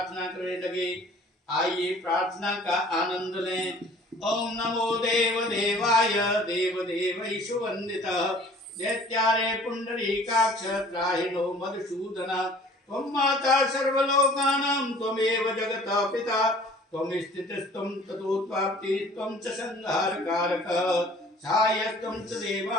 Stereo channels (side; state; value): both; normal; correlation 0.50